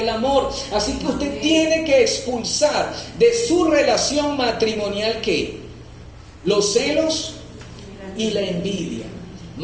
amor. Así que usted tiene que expulsar de su relación matrimonial ¿qué? Los celos y la envidia.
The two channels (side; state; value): both; identical; correlation 1.00